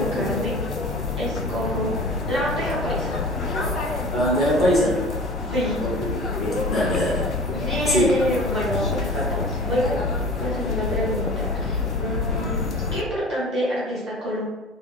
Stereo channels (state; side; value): normal; both; correlation 0.39